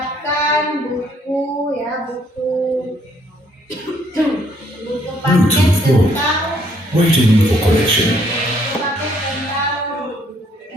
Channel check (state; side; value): normal; both; correlation 0.67